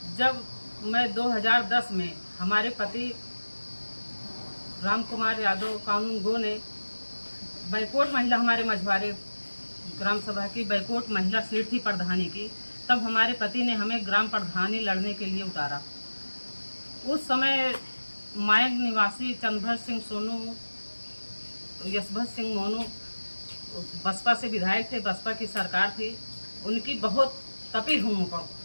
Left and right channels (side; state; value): both; inverted; correlation -1.00